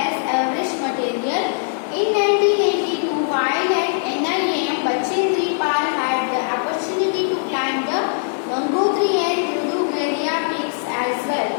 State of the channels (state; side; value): silent; right; digital silence